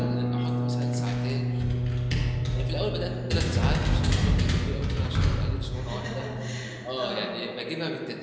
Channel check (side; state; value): both; identical; correlation 1.00